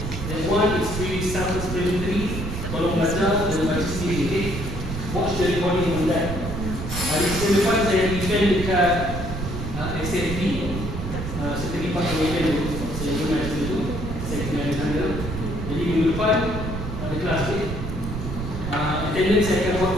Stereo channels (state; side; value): noise; right; rumble, 5 dB below the sound